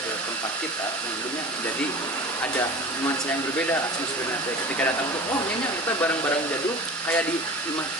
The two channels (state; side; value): normal; both; correlation 0.37